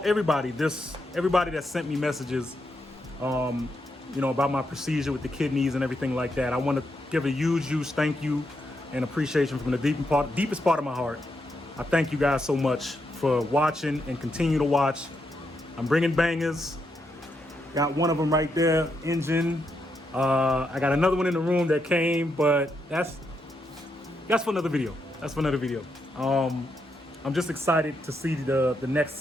that sent me messages, about my procedure with the kidneys and everything like that. I want to give a huge thank you and appreciation from the deepest part of my heart. I thank you guys so much for watching and continue to watch. I'm bringing bangers. Got one of them right there, engine. I got another one in the room that came, but that's for another video. I'm just excited to see the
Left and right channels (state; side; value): normal; both; correlation 0.81